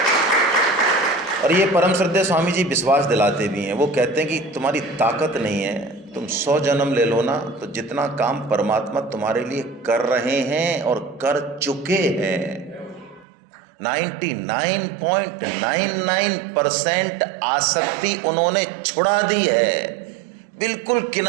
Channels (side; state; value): left; drops out; at 13.2 s